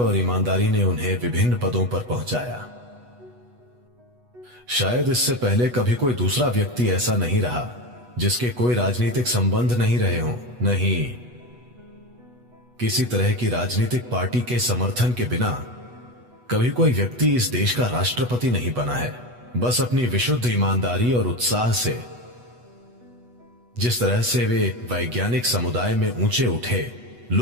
ईमानदारी ने उन्हें विभिन्न पदों पर पहुंचाया। शायद इससे पहले कभी कोई दूसरा व्यक्ति ऐसा नहीं रहा जिसके कोई राजनीतिक संबंध नहीं रहे हों, नहीं किसी तरह की राजनीतिक पार्टी के समर्थन के बिना कभी कोई व्यक्ति इस देश का राष्ट्रपति नहीं बना है। बस अपनी विशुद्ध ईमानदारी और उत्साह से, जिस तरह से वे वैज्ञानिक समुदाय में ऊंचे उठे,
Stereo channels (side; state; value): left; late; 8.2 ms